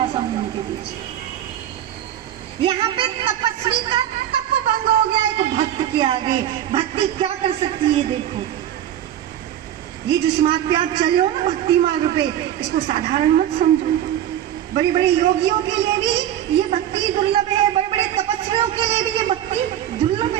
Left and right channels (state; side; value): quieter; left; 11.4 dB